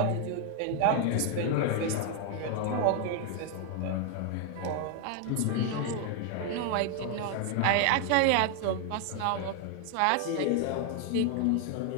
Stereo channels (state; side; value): different; both; correlation 0.01